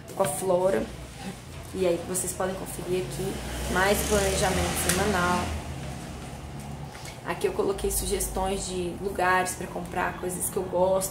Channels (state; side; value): identical; both; correlation 1.00